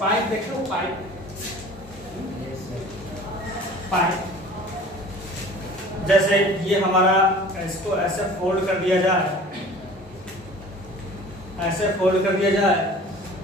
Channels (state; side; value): normal; both; correlation 0.45